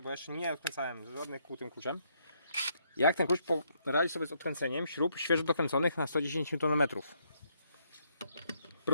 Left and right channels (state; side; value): inverted; both; correlation -0.73